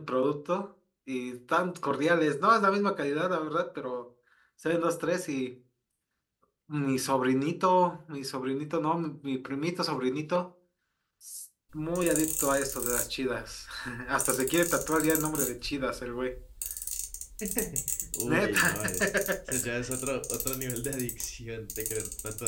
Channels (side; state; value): both; identical; correlation 1.00